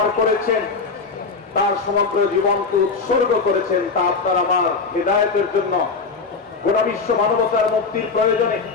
করেছেন, তার সমগ্র জীবনকে উৎসর্গ করেছেন তা আপনার আমার হেদায়েতের জন্য, গোটা বিশ্ব মানবতার মুক্তির প্রয়োজনে।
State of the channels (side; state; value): right; quieter; 4.6 dB